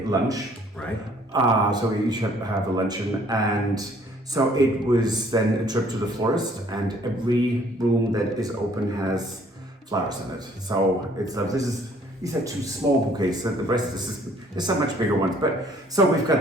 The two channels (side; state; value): both; normal; correlation 0.59